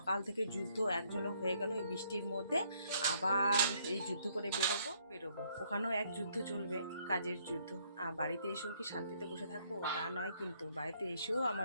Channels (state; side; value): inverted; both; correlation -0.67